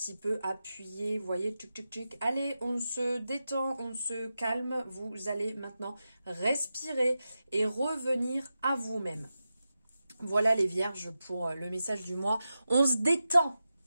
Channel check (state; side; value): inverted; both; correlation -0.91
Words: peu appuyer, vous voyez, tchic, tchic, tchic. Allez, on se détend, on se calme. Vous allez maintenant respirer et revenir à vous-même. Voilà les vierges pour le message du mois. On se détend.